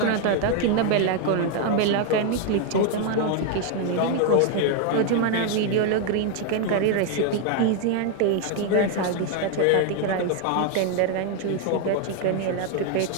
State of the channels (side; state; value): both; different; correlation 0.01